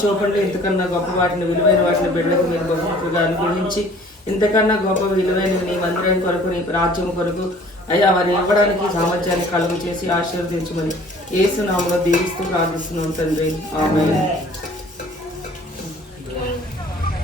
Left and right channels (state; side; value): normal; both; correlation 0.51